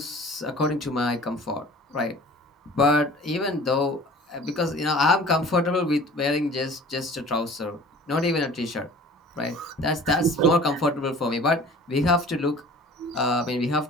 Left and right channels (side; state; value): both; normal; correlation 0.45